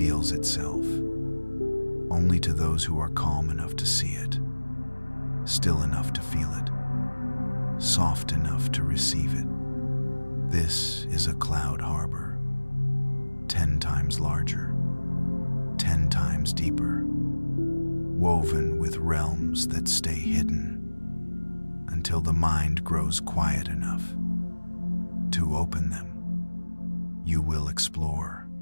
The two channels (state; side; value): inverted; both; correlation -1.00